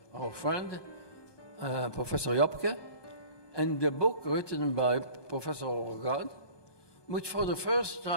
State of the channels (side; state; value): right; late; 1.2 ms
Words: our friend, Professor Jobke, and the book written by Professor Orgard, which for the first